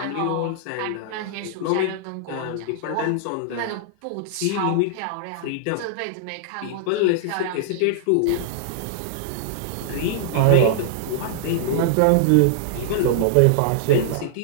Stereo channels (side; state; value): both; different; correlation -0.01